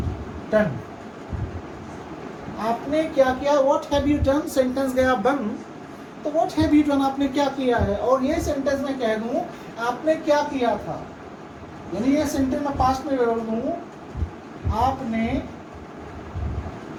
डन, आपने क्या किया, what have you done, sentence गया बन। तो व्हाट हैव यू डन, आपने क्या किया है। और ये सेंटेंस मैं कह दूं आपने क्या किया था, यानी ये सेंटेंस मैं पास्ट में बोल दूं आपने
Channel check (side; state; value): both; identical; correlation 1.00